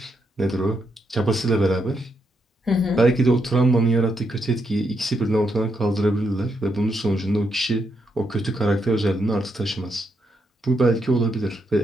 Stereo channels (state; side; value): normal; both; correlation 0.80